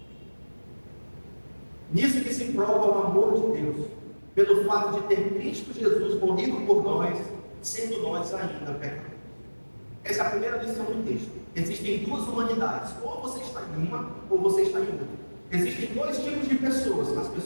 Nisso que se prova o amor de Deus, pelo fato de ter Cristo Jesus morrido por nós, sendo nós ainda pecadores. Essa é a primeira lição do texto. Existem duas humanidades, ou você está em uma, ou você está em outra. Existem dois tipos de pessoas: as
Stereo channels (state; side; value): inverted; both; correlation -1.00